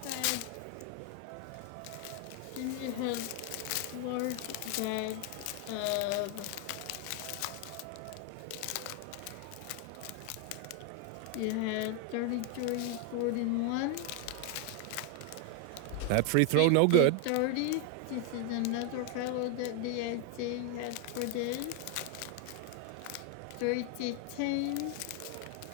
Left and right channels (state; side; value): different; both; correlation 0.01